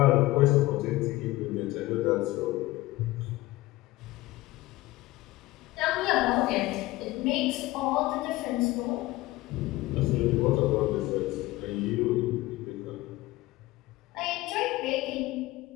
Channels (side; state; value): right; quieter; 18.6 dB